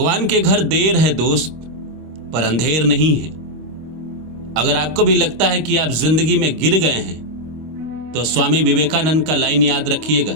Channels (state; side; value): late; left; 25 ms